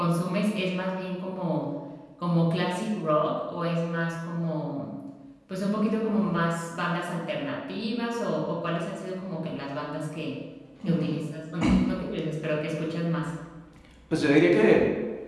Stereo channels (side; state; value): both; identical; correlation 1.00